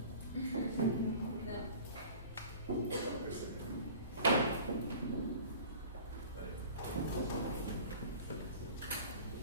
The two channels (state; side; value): inverted; both; correlation -0.43